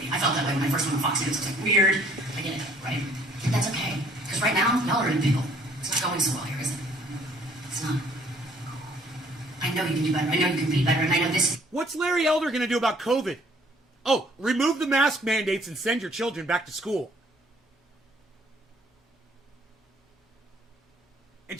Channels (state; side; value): normal; both; correlation 0.60